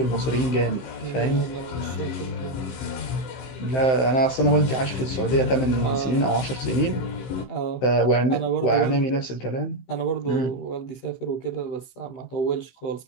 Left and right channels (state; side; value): late; right; 15 ms